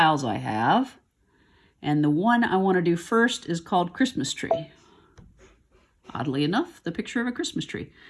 I have. And the one I want to do first is called Christmas Tree. Oddly enough, the picture of a Christmas tree.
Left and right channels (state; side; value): identical; both; correlation 1.00